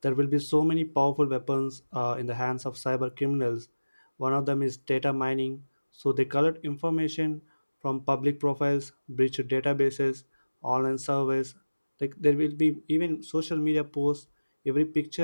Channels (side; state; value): both; inverted; correlation -1.00